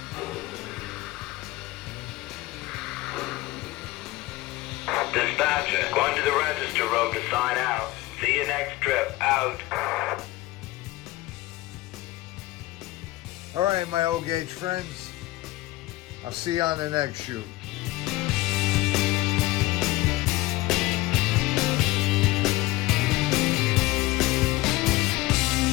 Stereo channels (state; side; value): quieter; right; 18.7 dB